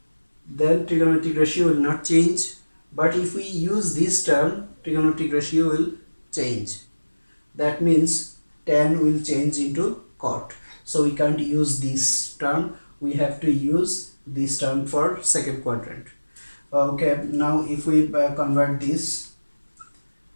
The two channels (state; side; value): inverted; both; correlation -1.00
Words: then trigonometric ratio will not change. But if we use this term, trigonometric ratio will change. That means tan will change into cot. So we can't use this term. We have to use this term for second quadrant. Okay, now if we convert this,